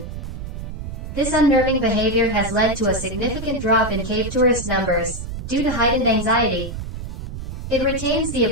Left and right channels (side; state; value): right; noise; rumble, 8 dB below the sound